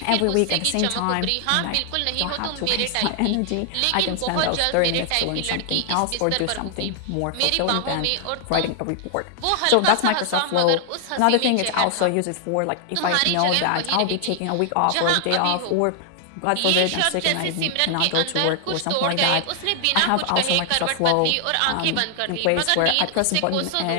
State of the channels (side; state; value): both; different; correlation 0.00